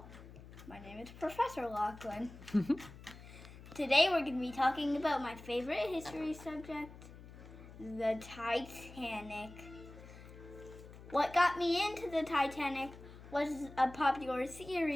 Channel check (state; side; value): noise; left; hum, 17 dB below the sound